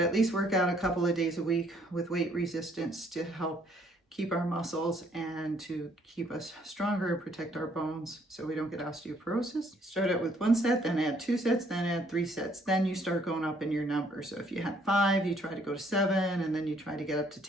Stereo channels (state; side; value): normal; both; correlation 0.65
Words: at least work out a couple of days a week with weight resistance to help keep our muscles and to keep us stronger and protect our bones so we don't get osteoporosis. Start out with 1 set, then add 2 sets, then add 3 sets. Then you start going up in your number. So if you had 5, you try to go to 7, and then you try to get up to